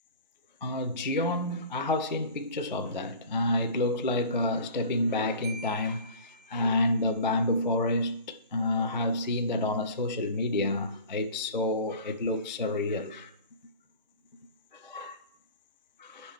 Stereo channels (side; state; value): both; inverted; correlation -0.41